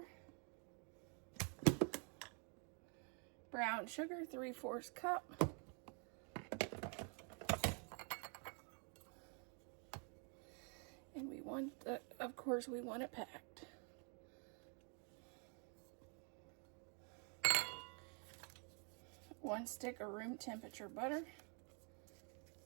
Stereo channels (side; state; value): left; quieter; 39.6 dB